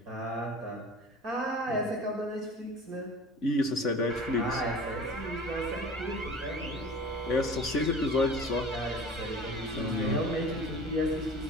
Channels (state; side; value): normal; both; correlation 0.40